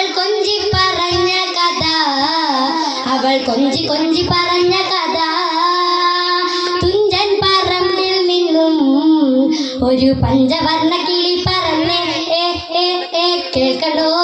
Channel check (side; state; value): both; identical; correlation 1.00